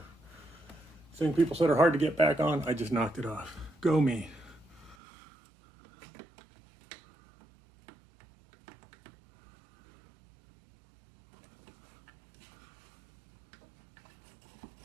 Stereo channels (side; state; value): left; drops out; at 5.0 s